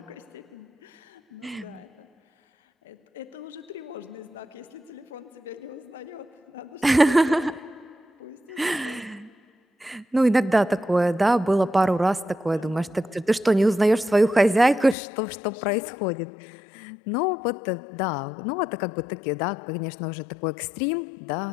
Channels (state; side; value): drops out; right; at 15.0 s